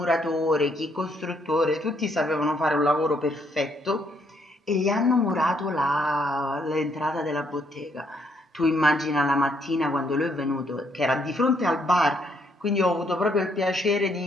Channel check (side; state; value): both; normal; correlation 0.71